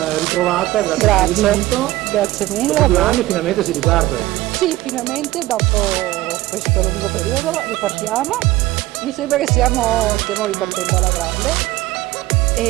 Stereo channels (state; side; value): quieter; left; 17.4 dB